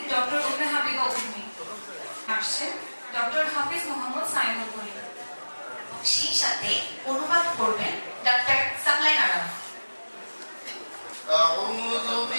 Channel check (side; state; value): both; inverted; correlation -1.00